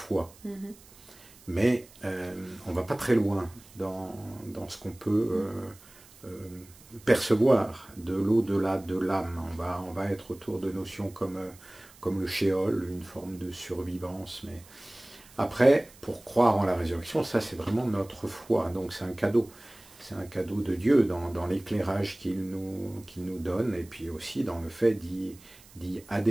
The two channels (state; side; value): noise; right; hiss, 24 dB below the sound